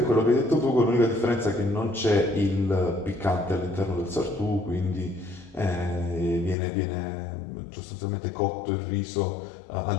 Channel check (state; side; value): drops out; right; at 6.6 s